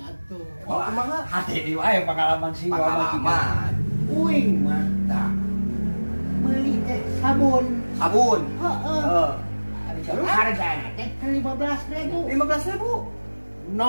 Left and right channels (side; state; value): both; inverted; correlation -1.00